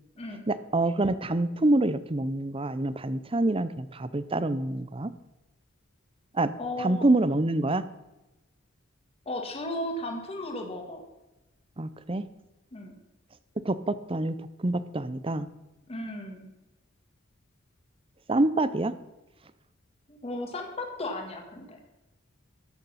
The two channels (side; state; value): both; normal; correlation 0.67